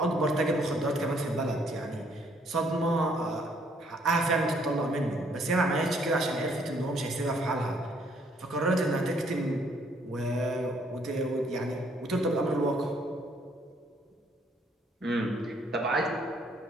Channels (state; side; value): normal; both; correlation 0.66